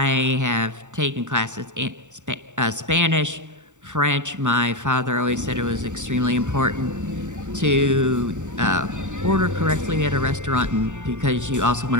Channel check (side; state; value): left; late; 0.85 ms